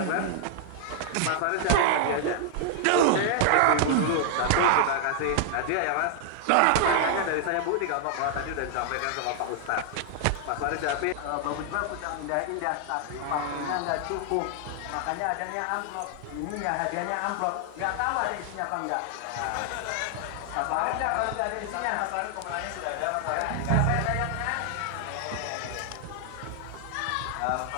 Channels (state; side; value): different; both; correlation 0.00